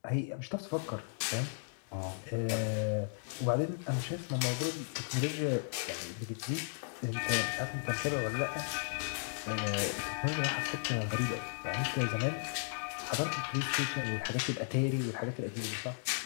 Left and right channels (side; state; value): right; silent; digital silence